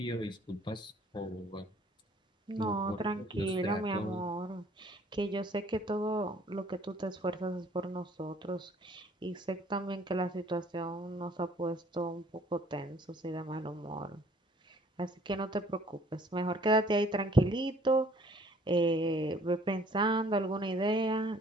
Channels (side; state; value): both; normal; correlation 0.58